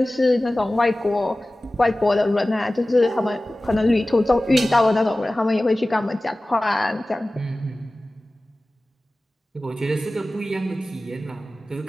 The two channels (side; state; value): both; normal; correlation 0.97